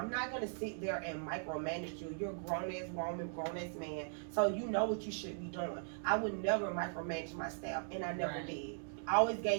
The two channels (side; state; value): left; silent; digital silence